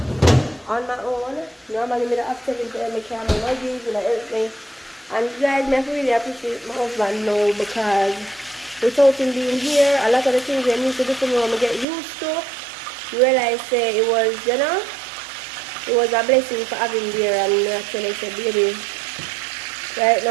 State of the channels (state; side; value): drops out; left; at 11.9 s